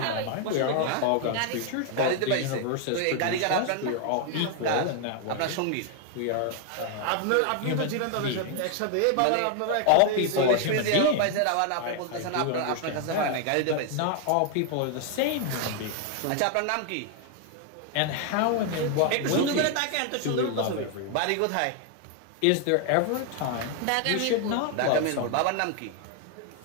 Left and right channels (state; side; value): different; both; correlation 0.00